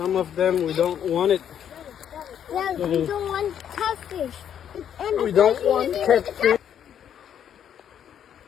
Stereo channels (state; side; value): quieter; right; 9.2 dB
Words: of them we don't want it. Yeah, we don't want catfish. And We don't want catfish.